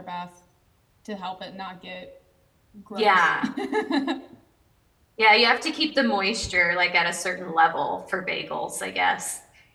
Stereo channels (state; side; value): identical; both; correlation 1.00